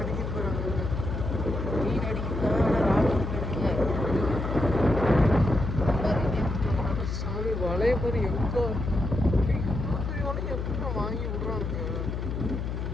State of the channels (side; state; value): left; noise; hum, 3 dB below the sound